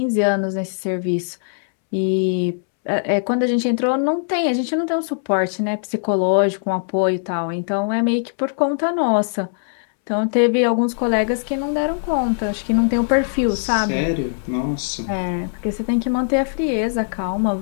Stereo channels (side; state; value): right; silent; 65 dB below the other